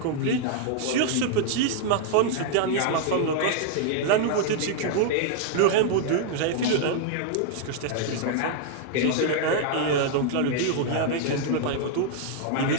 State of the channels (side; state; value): both; different; correlation 0.00